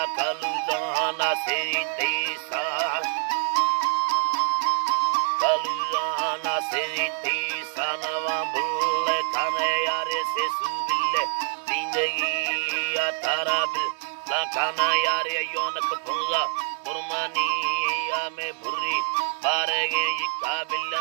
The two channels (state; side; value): silent; left; digital silence